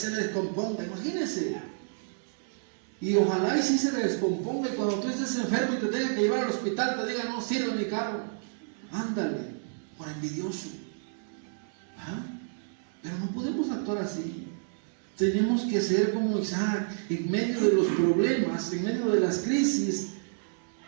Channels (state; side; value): silent; left; 58 dB below the other